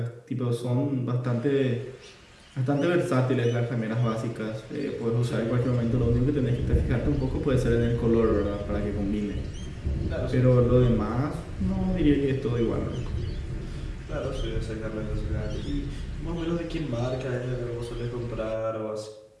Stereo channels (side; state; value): both; identical; correlation 1.00